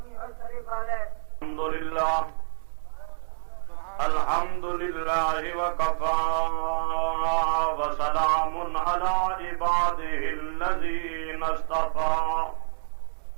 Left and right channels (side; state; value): left; silent; 60 dB below the other